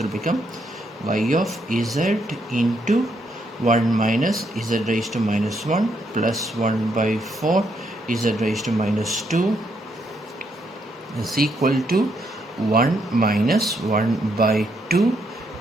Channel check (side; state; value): both; normal; correlation 0.76